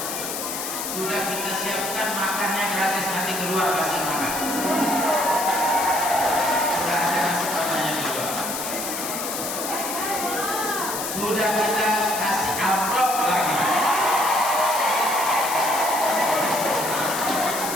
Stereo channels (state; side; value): noise; left; hiss, 5 dB below the sound